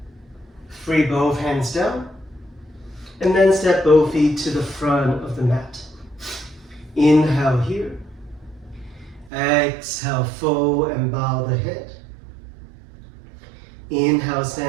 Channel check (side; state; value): left; drops out; at 9.3 s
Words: Free both hands down. And then step both feet to the front of the mat. Inhale here. Exhale, fold and bow the head. Inhale,